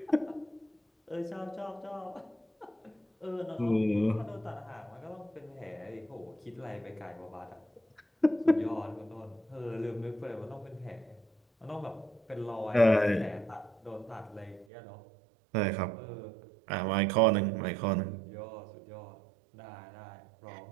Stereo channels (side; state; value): left; drops out; at 14.7 s